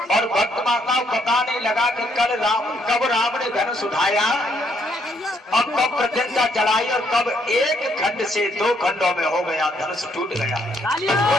और भक्त माता बताने लगा कि कब राम ने धनुष उठाया और कब प्रत्यंता चढ़ाई और कब एक खंड से दो खंडों में हो गया, धनुष टूट गया।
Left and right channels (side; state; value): both; normal; correlation 0.71